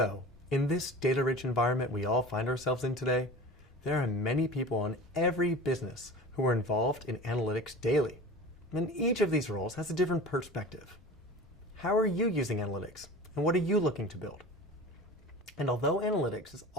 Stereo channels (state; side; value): normal; both; correlation 0.36